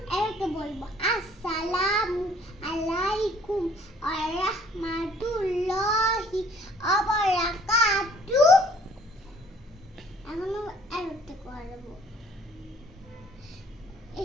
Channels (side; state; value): both; normal; correlation 0.58